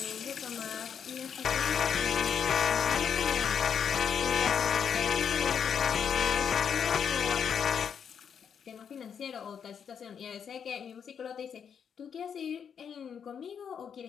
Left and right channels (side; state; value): right; quieter; 7.5 dB